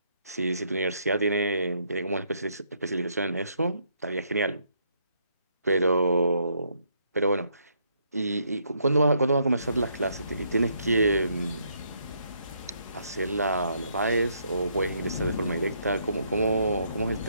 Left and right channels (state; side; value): inverted; both; correlation -0.73